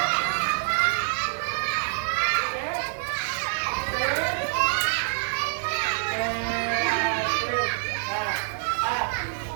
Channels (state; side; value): silent; left; 58 dB below the other